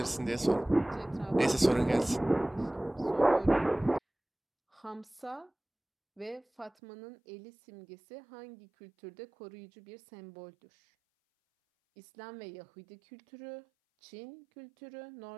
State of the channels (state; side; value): drops out; left; at 6.7 s